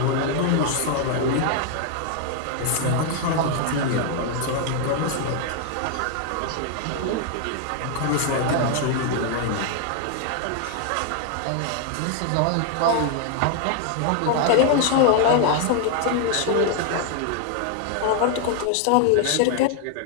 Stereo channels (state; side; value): different; both; correlation 0.00